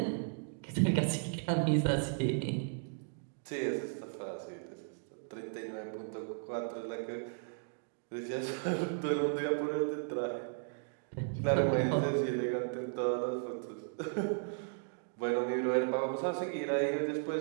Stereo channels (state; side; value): silent; left; digital silence